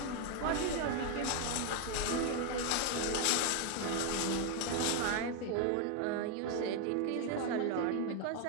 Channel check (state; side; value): different; both; correlation 0.01